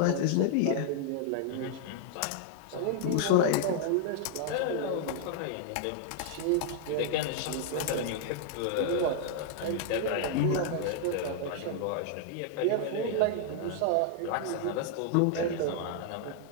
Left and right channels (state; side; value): different; both; correlation 0.00